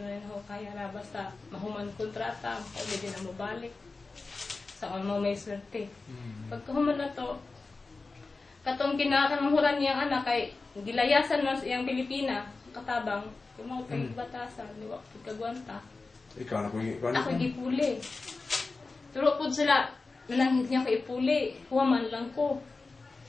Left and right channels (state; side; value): quieter; right; 3.8 dB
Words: rin ho kaya ra basta mahuman kontrata, pwede na mo balik. Sa mo may swerte. Pagkahuman na to, katong kinakamuhuran niyang anak kay gilayasan man siyang Pilipina, katabang, kung mga batasan, di ba, kagwanta. Ikaw na kung ako gipuli. Pero po sila, nanangit niya ko ipuli, huwaman lang ko.